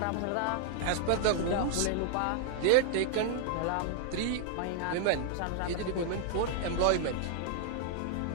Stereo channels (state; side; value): different; both; correlation 0.00